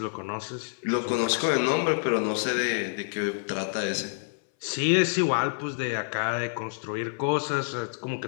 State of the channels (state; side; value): silent; right; 60 dB below the other